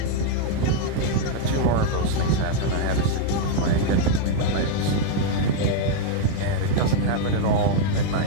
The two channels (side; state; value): both; different; correlation 0.00